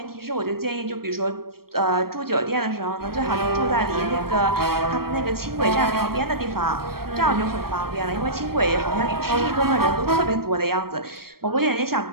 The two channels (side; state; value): left; late; 0.94 ms